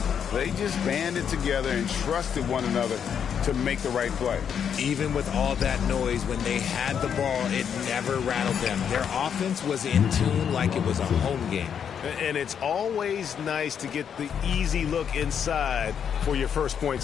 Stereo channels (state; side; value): quieter; right; 7.9 dB